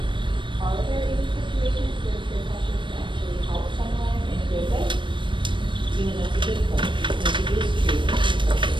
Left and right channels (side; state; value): left; late; 0.24 ms